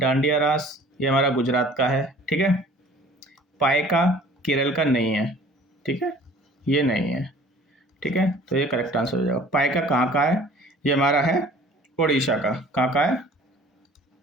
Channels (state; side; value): normal; both; correlation 0.50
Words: रास ये हमारा गुजरात का है। ठीक है, पायका केरल का नहीं है। ठीक है, ये नहीं है। ठीक है, तो ये करेक्ट आंसर हो जाएगा। पायका कहाँ का है? ये हमारा है उड़ीसा का। कहाँ का है?